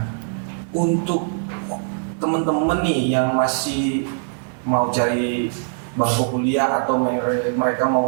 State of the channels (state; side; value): silent; left; digital silence